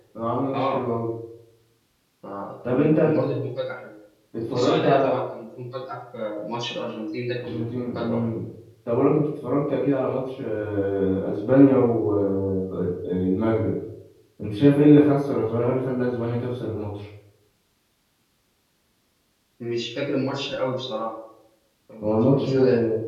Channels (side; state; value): both; identical; correlation 1.00